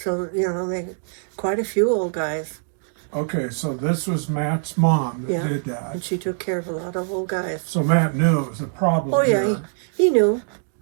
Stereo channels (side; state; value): left; silent; digital silence